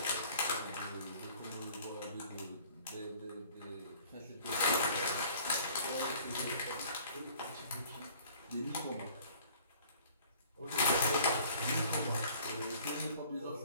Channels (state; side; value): inverted; both; correlation -0.52